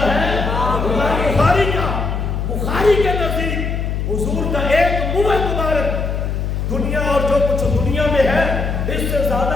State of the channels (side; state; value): left; noise; hum, 2 dB below the sound